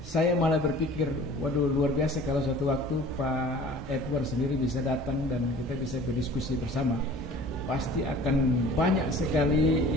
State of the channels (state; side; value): normal; both; correlation 0.46